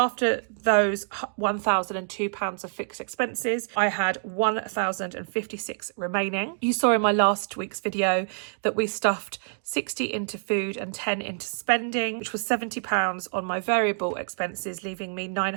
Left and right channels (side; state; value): left; silent; digital silence